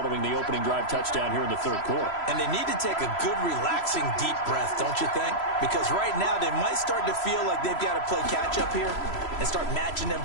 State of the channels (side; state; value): right; late; 3.0 ms